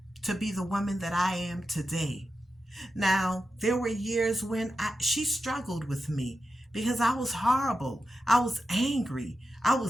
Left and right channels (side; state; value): both; normal; correlation 0.90